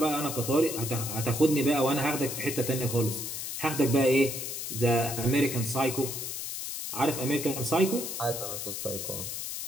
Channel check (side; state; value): left; noise; hiss, 5 dB below the sound